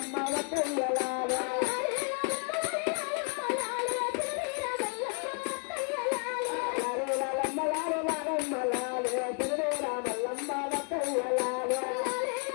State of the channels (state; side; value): quieter; right; 39.5 dB